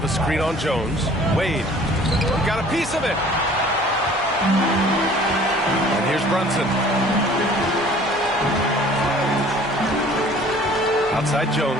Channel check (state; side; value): normal; both; correlation 0.51